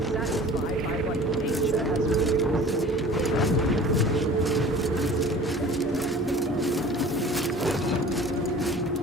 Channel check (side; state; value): both; normal; correlation 0.44